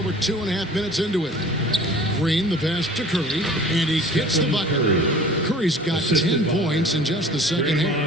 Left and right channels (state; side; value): normal; both; correlation 0.46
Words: 2.5 minutes into it. screen, the pass to Curry, and he gets the bucket. Curry's got 10 points in just the second